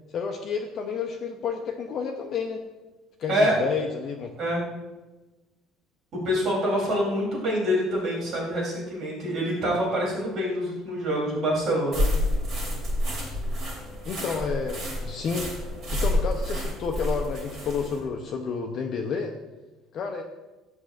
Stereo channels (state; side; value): normal; both; correlation 0.63